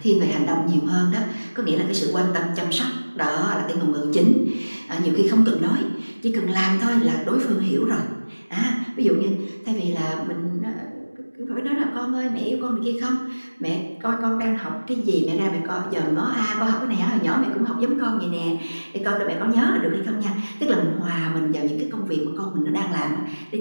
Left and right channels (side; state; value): both; inverted; correlation -1.00